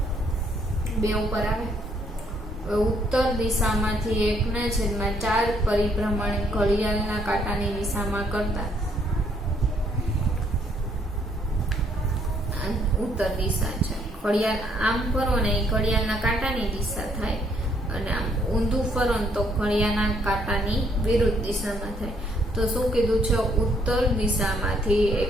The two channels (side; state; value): both; normal; correlation 0.68